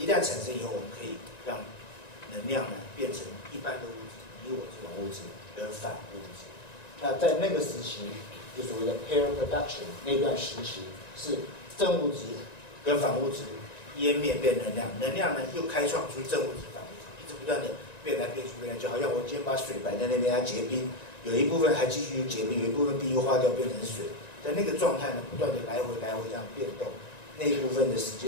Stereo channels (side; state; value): right; late; 1.9 ms